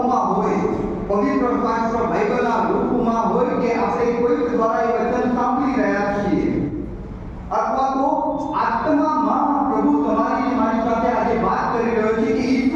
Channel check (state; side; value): identical; both; correlation 1.00